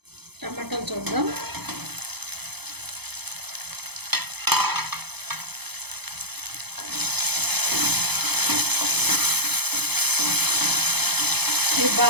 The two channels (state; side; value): late; left; 0.98 ms